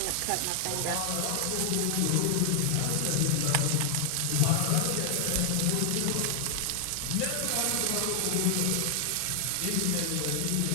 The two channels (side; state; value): both; different; correlation 0.00